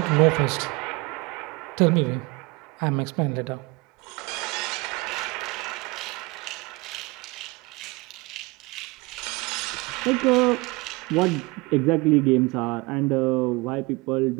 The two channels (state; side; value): quieter; left; 24.7 dB